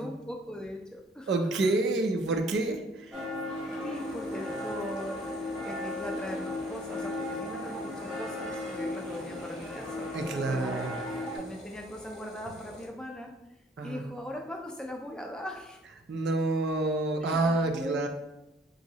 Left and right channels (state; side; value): normal; both; correlation 0.59